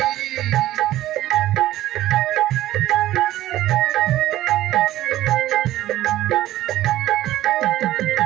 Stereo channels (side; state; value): left; quieter; 14.7 dB